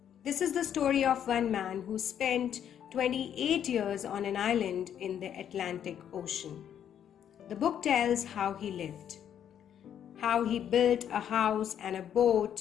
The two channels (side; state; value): right; quieter; 9.4 dB